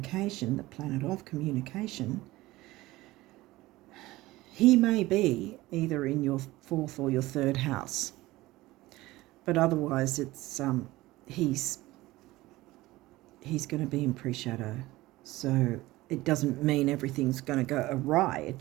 the planet of communication. He may be either in your 4th or your 3rd house, but otherwise it's he's going to be in pre-shadow. So it doesn't mean everything's going to go awry. It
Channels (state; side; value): quieter; left; 18.5 dB